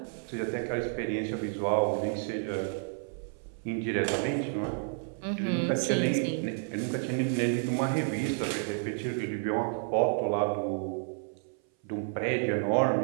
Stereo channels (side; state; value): left; silent; 57 dB below the other